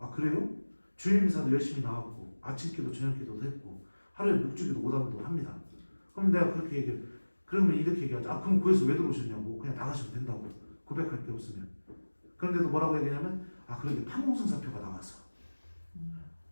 그래요? 주일미사도 열심히 나왔고 아침기도 저녁기도도 했고 하루에 6주기도 5단도 합니다. 그럼 내가 그렇게 얘기해. 그러면 이렇게 얘기하죠. 그럼 거기서 왜 들어오셨냐고. 그냥 나가시면 된다고. 고백할 게 없으면. 그런데도 뭐라고 얘기하냐면 그런데 판공승사표가 나와서.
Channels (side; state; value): both; inverted; correlation -1.00